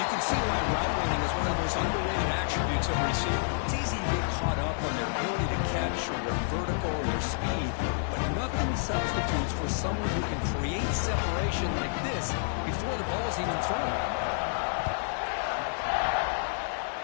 can see why route running is one of the most underrated attributes of a receiver. It's easy to get caught up on their ability to catch or their vertical or their speed, but nothing substitutes for someone who can create separation like this before the ball is even thrown.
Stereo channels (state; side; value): silent; right; 58 dB below the other